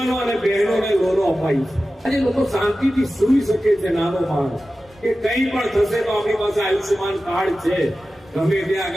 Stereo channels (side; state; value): both; normal; correlation 0.94